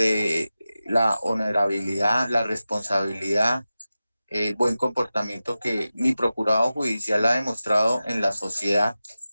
la honorabilidad, la responsabilidad, el buen comportamiento que mi procurador judicial ha demostrado en la sociedad,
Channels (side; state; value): both; inverted; correlation -0.94